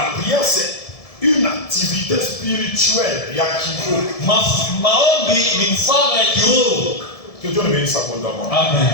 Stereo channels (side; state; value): right; late; 1.7 ms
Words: prière, c'est une activité spirituelle. Que Dieu ne bénisse abondamment.